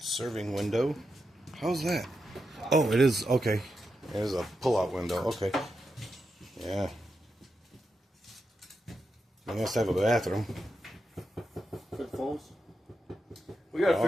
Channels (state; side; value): normal; both; correlation 0.87